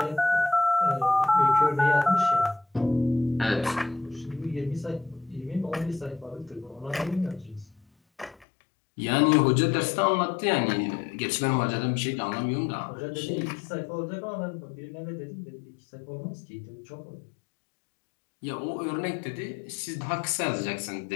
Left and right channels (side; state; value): right; drops out; at 8.5 s